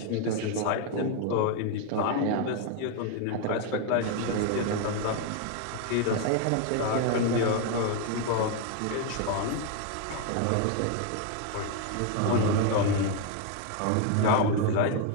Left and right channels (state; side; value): different; both; correlation 0.01